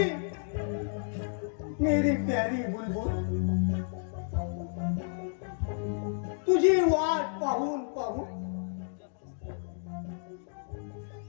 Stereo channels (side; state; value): right; silent; digital silence